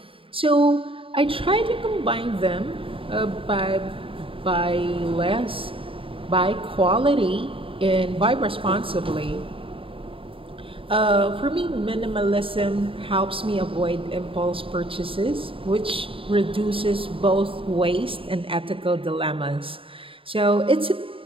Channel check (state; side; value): late; left; 0.26 ms